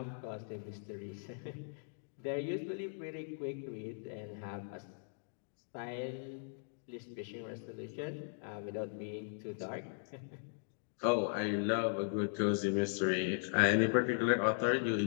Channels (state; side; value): silent; right; digital silence